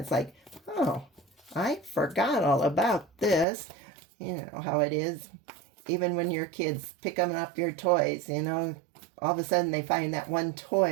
It's like, oh, I forgot all about this. You know how it is. Even when your kids pick up your toys, all of a sudden they find that one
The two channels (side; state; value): left; drops out; at 3.5 s